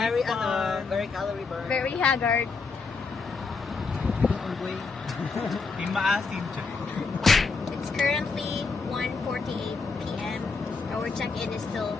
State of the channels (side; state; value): right; quieter; 4.6 dB